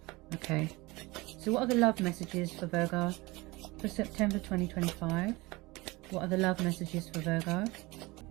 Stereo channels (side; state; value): left; quieter; 22.7 dB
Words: Okay, so what are the love messages for Virgo for September 2025? What are the love messages for Virgo?